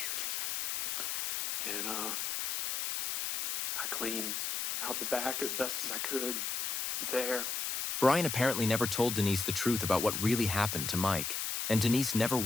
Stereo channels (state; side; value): noise; left; hiss, 2 dB below the sound